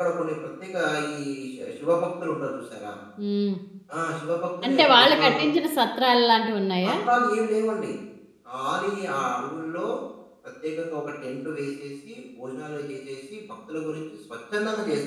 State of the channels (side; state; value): both; identical; correlation 1.00